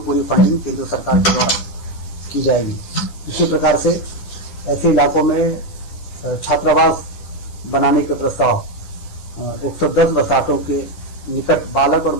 फंडिंग केंद्र सरकार के द्वारा की जाएगी। इसी प्रकार से ऐसे इलाकों में छात्रावास बनाने के प्रस्ताव 110 बसातों के निकट बालक और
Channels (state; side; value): late; right; 10 ms